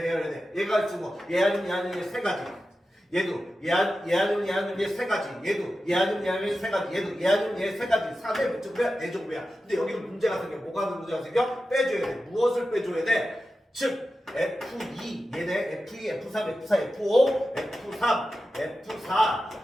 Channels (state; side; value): normal; both; correlation 0.92